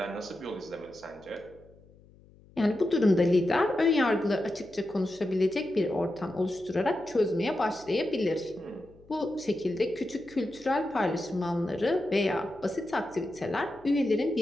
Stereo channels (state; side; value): noise; left; hum, 26 dB below the sound